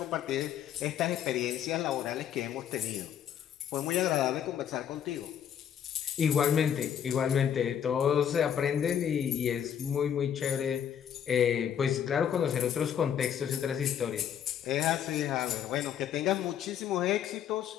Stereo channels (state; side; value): quieter; right; 9.1 dB